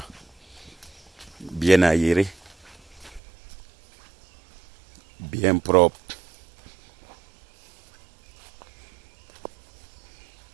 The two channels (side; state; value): left; drops out; at 3.2 s